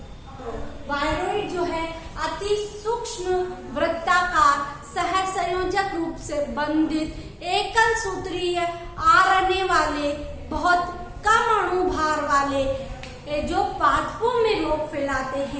वायरॉइड जो है अति सूक्ष्म, वृत्ताकार, सहसंयोजक रूप से बंधित, एकल सूत्रीय आरएनए वाले, बहुत कम अणुभार वाले, जो पादपों में रोग फैलाते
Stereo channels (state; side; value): identical; both; correlation 1.00